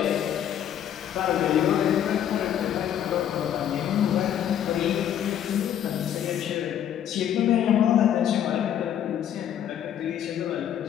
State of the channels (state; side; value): quieter; right; 10.1 dB